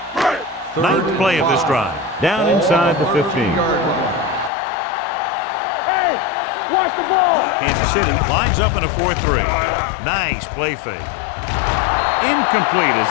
Ninth play of this drive. Down inside the 15. Hey, watch the ball. Kansas City lines up in a 4-3. Nice play fake. Incomplete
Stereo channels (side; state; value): right; drops out; at 4.5 s